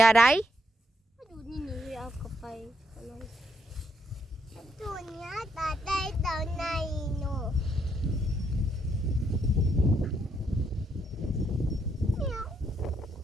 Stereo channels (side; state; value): both; normal; correlation 0.76